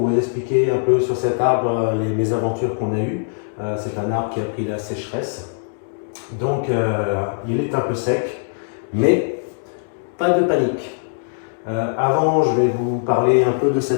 vous expliquer un peu sur cet arbre les mésaventures qu'on a eues. C'est un arbre qui a pris la sécheresse, donc il est un peu sec, mais pas de panique. Avant, je vais vous parler un peu de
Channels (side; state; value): right; silent; 65 dB below the other